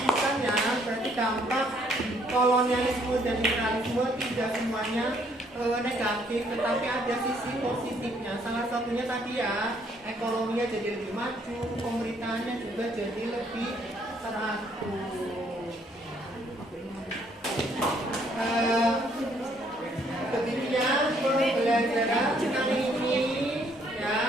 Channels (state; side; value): normal; both; correlation 0.67